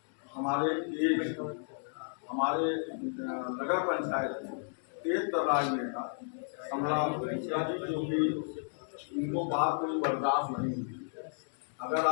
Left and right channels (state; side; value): silent; right; digital silence